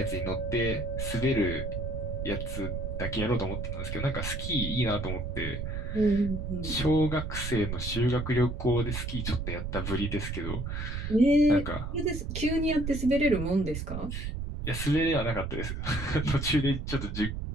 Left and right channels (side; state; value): right; noise; rumble, 4 dB below the sound